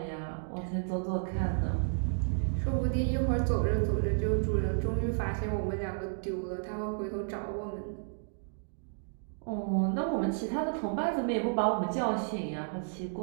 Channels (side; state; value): left; silent; digital silence